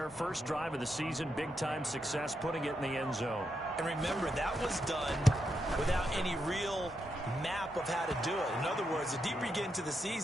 First drive of the season, big-time success, putting it in the end zone. And remember, that was done without any real map of how to do it. In other words, the deeper you get into the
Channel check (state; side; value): normal; both; correlation 0.83